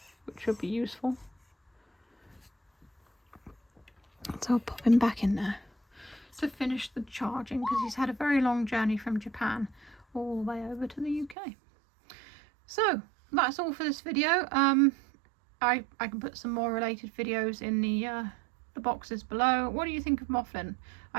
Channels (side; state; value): left; drops out; at 11.4 s